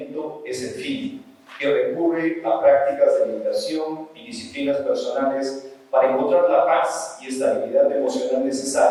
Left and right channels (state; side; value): identical; both; correlation 1.00